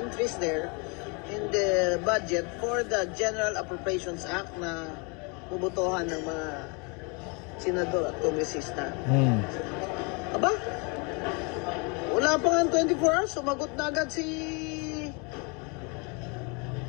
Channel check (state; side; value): quieter; right; 32.3 dB